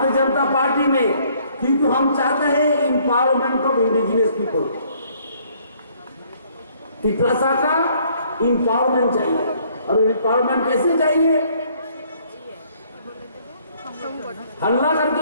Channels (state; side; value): inverted; both; correlation -0.63